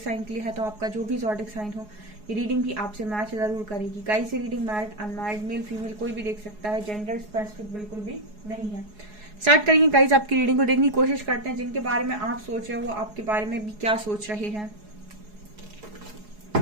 साइन के लिए है, तो आपका जो भी ज़ोडिक साइन हो ये रीडिंग भी आपसे मैच जरूर करेगी। गाइस, ये reading married unmarried male female कोई भी देख सकता है, जेंडर स्पेसिफिक बिल्कुल भी नहीं है। स्टार्ट करेंगे गाइस, आपकी रीडिंग को देखने की कोशिश करते हैं। जिनके बारे में आप सोच रहे हो वो आपके बारे में भी क्या सोच रहे हैं।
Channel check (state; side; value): late; left; 4.8 ms